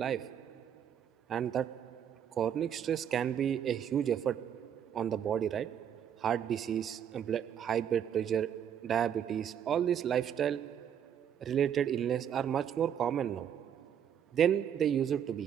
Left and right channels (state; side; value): quieter; left; 9.0 dB